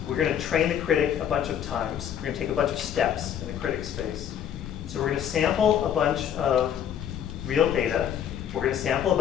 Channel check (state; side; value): quieter; right; 9.4 dB